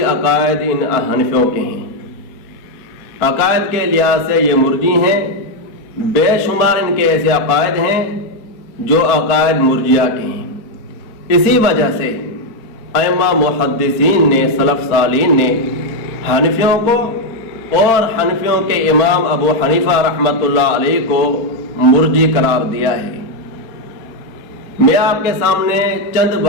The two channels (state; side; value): late; right; 4.3 ms